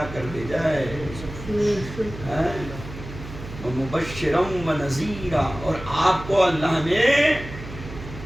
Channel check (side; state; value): right; noise; hum, 12 dB below the sound